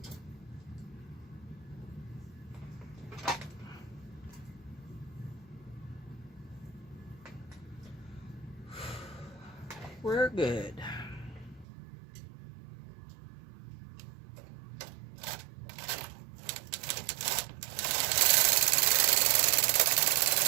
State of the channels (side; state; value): left; drops out; at 11.7 s